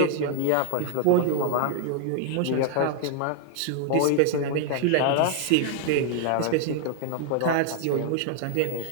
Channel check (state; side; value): different; both; correlation 0.00